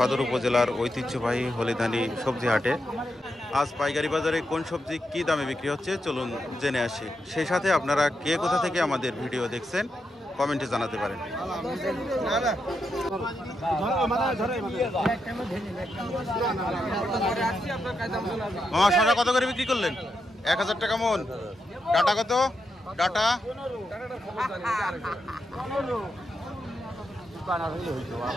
উপজেলার ঐতিহ্যবাহী হলিধানি সবজি হাটে। আজ পাইকারি বাজারে কোন সবজি কী দামে বিক্রি হচ্ছে চলুন জেনে আসি। সেই সাথে আপনারা কে কোথা থেকে আমাদের ভিডিও দেখছেন কমেন্টে জানাতে পারেন। শসা কত করে বিক্রি করলেন? 1000 টাকা মন। ডাটা কত? ডাটা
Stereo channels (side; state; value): both; normal; correlation 0.84